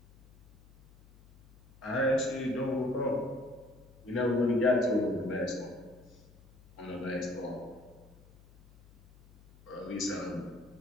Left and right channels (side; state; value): left; noise; hum, 25 dB below the sound